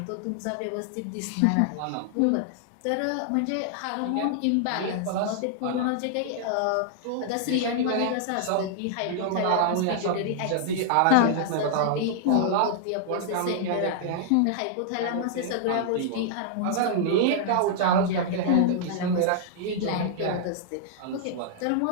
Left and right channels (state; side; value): different; both; correlation -0.01